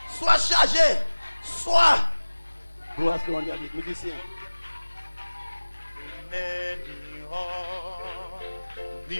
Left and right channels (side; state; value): both; inverted; correlation -1.00